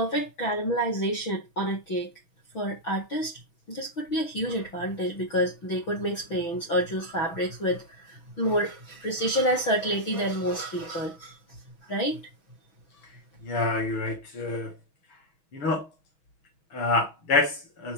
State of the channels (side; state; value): right; late; 6.2 ms